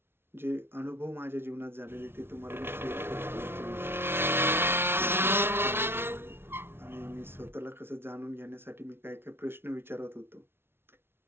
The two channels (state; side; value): late; left; 0.11 ms